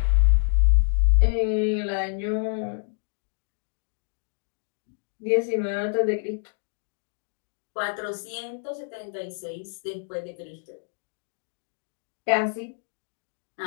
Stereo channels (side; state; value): right; silent; digital silence